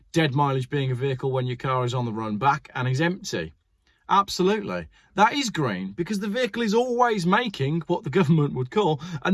Dead mileage being a vehicle when your car is on the run back and is empty. Absolutely. That is green because the vehicle is always making what the government would call a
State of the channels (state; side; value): identical; both; correlation 1.00